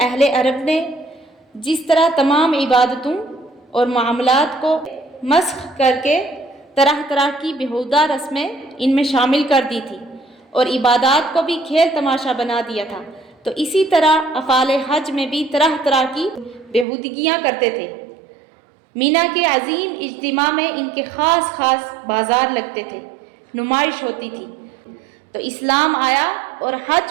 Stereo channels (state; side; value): drops out; left; at 16.9 s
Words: اہل عرب نے جس طرح تمام عبادتوں اور معاملات کو مسخ کر کے طرح طرح کی بیہودہ رسمیں ان میں شامل کر دی تھی اور عبادات کو بھی کھیل تماشا بنا دیا تھا، تو اسی طرح افعال حج میں بھی طرح طرح کی بیہودگیاں کرتے تھے۔ مینا کے عظیم اجتماع میں ان کے خاص خاص بازار لگتے تھے، نمائش ہوتی تھی۔ تو اسلام آیا اور